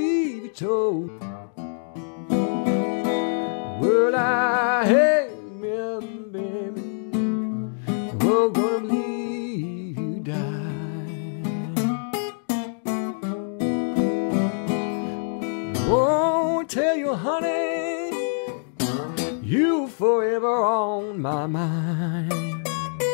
you told. Well, I hate me, baby. We're gonna believe you die. Oh, tell you, honey, you forever on my mind.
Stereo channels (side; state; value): right; silent; digital silence